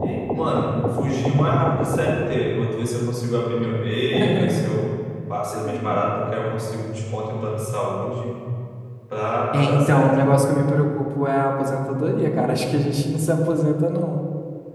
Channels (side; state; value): both; identical; correlation 1.00